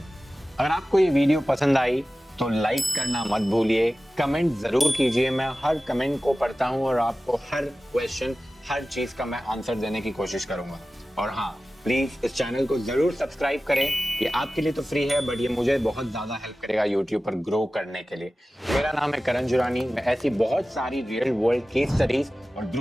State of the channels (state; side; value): normal; both; correlation 0.96